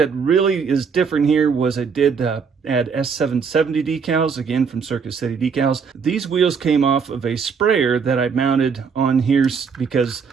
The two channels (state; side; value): quieter; left; 5.9 dB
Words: really is different here was I did add S770 decals, again from Circuit City Decals. These wheels came off of a sprayer that I mounted on here because